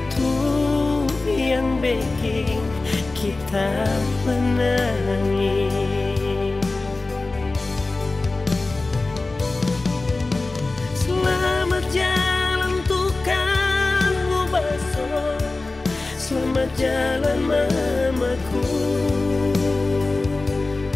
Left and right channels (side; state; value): right; quieter; 3.3 dB